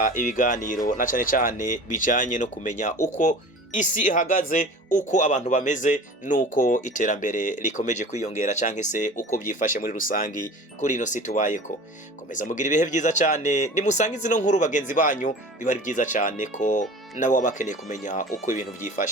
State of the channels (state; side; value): normal; both; correlation 0.39